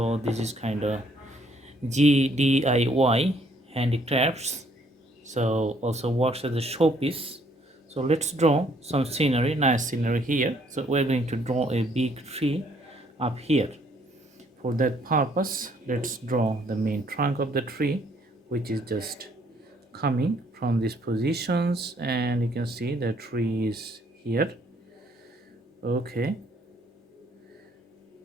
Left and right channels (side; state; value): both; normal; correlation 0.65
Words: this is kind of GDIY handicrafts. So also works as a showpiece. So let's draw some scenery, nice scenery here. So we're going to draw a big tree up here. For that purpose, let's draw the main trunk of the tree, which is just coming from these positions, and you can see the tree is here. Okay,